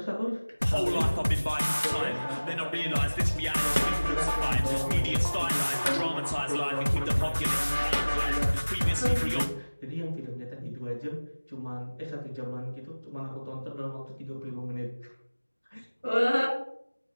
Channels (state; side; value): inverted; both; correlation -1.00